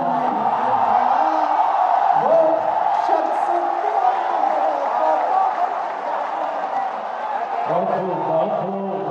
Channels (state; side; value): identical; both; correlation 1.00